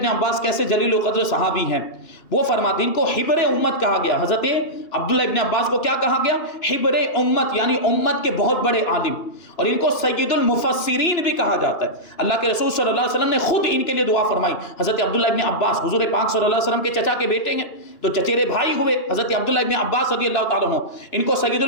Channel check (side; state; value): right; late; 2.9 ms